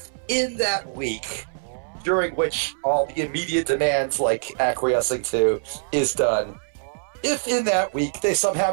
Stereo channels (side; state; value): left; silent; 63 dB below the other